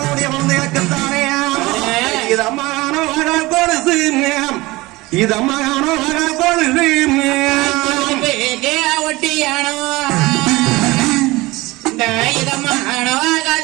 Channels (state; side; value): quieter; left; 20.8 dB